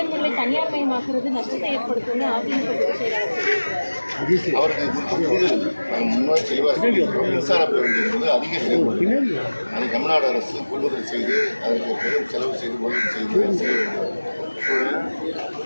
தனியார் மயமாக்குறது நஷ்டத்தை ஏற்படுத்தும் அவருக்கு முன்னாடி தெளிவாக மின்சார பேருந்து என்பது அதிக செலவு. அதை தமிழ்நாடு அரசு கொள்முதல் செய்து அதற்கு பெரும் செலவு செய்து முதலீடு செய்ய வேண்டிய சூழல்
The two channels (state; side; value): inverted; both; correlation -1.00